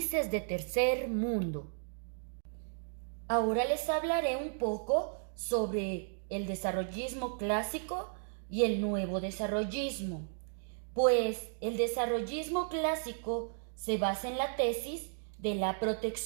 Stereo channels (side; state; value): left; silent; digital silence